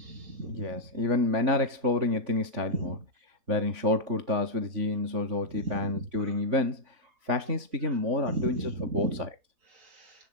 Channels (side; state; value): left; late; 3.5 ms